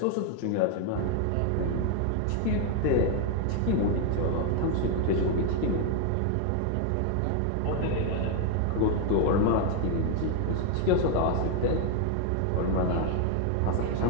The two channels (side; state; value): both; different; correlation 0.00